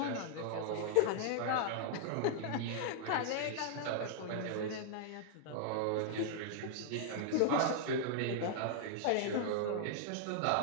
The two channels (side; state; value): both; different; correlation -0.01